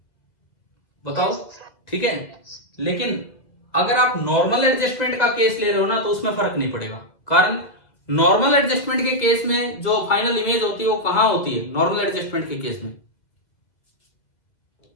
बताओ। ठीक है, लेकिन अगर आप नॉर्मल एडजस्टमेंट का केस ले रहे हो ना तो उसमें फर्क नहीं पड़ेगा। कारण नॉर्मल एडजस्टमेंट के केस में जो फाइनल इमेज होती है वो कहां होती है? नॉर्मल एडजस्टमेंट के केस में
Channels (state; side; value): late; right; 1.9 ms